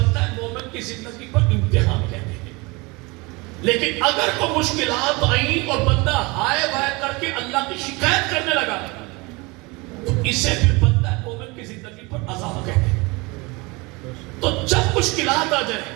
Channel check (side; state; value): left; quieter; 25.7 dB